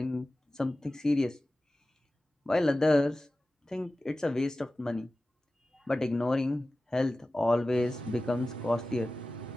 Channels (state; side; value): normal; both; correlation 0.96